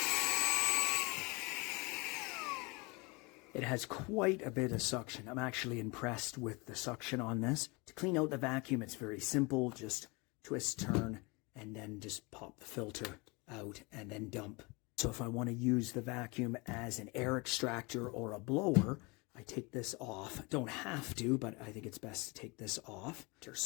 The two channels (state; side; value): quieter; right; 27.4 dB